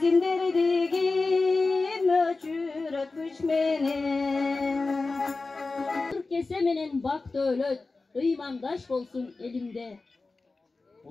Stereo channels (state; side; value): quieter; right; 3.6 dB